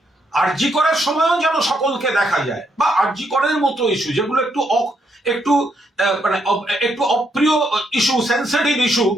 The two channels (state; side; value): normal; both; correlation 0.77